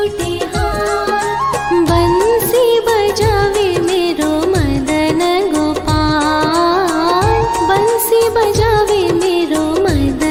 हाथ, बंसी बजावे मेरो मदन गोपाल, बंसी बजावे मेरो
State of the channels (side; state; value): both; identical; correlation 1.00